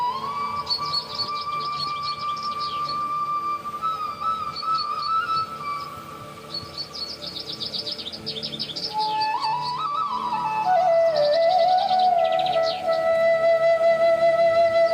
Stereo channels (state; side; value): identical; both; correlation 1.00